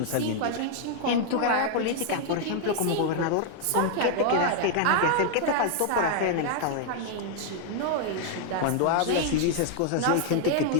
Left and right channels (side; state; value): both; different; correlation 0.00